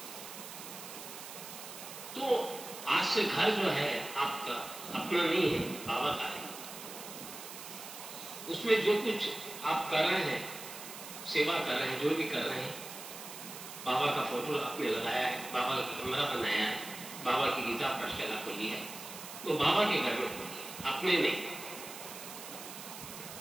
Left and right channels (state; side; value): noise; right; hiss, 11 dB below the sound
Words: तो आज से घर जो है आपका अपना नहीं है, बाबा का है। उसमें जो कुछ आप कर रहे हैं, सेवा कर रहे हैं, जो भी कर रहे हैं, बाबा का फोटो आपने लगाया है, बाबा का कमरा बनाया है, बाबा की गीता पाठशाला खोली है, वो बाबा के घर में खोली है, अपने नहीं।